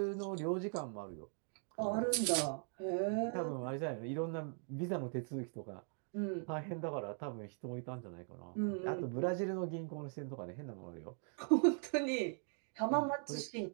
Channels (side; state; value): left; silent; 51 dB below the other